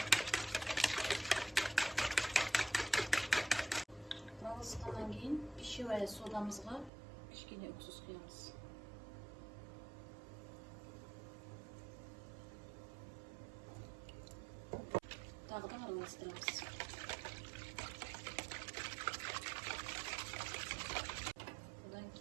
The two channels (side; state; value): left; drops out; at 6.9 s